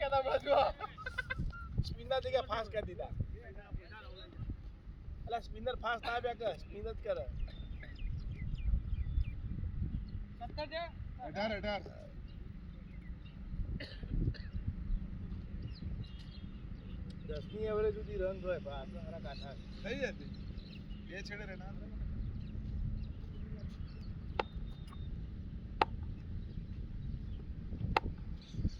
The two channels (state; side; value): identical; both; correlation 1.00